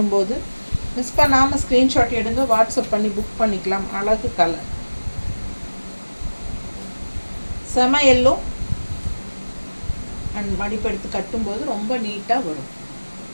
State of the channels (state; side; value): inverted; both; correlation -1.00